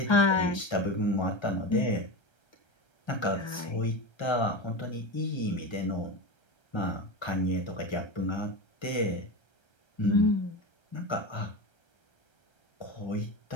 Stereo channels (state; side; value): late; right; 1.3 ms